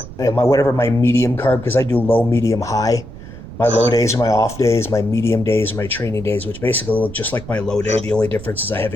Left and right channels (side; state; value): right; noise; rumble, 14 dB below the sound